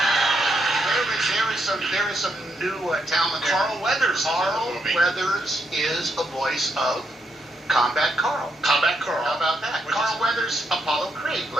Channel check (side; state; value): both; normal; correlation 0.79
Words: There is some new talent. Carl Weathers. Carl Weathers is a voice of Combat Carl. Combat Carl. How about that? Carl Weathers, Apollo Creed,